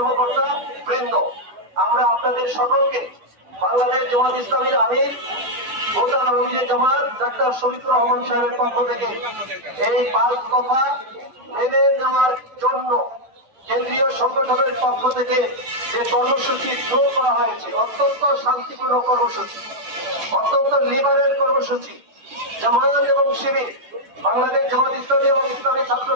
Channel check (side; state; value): left; late; 12 ms